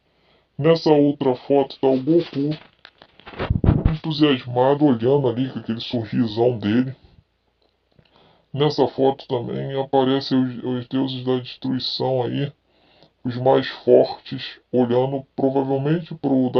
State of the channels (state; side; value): identical; both; correlation 1.00